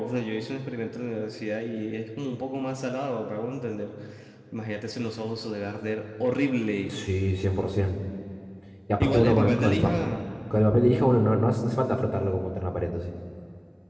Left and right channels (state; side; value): identical; both; correlation 1.00